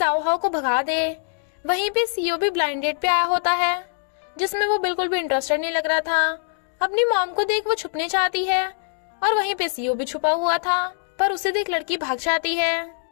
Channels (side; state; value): right; silent; digital silence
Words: को भगा दे। वहीं पे सीईओ भी ब्लाइंड डेट पे आया होता है जिसमें वो बिल्कुल भी इंटरेस्टेड नहीं लग रहा था। अपनी मॉम को देख वो छुपने चाहती है और वहीं पे सीईओ भी छुपा हुआ था, पर उसे देख लड़की भाग जाती है।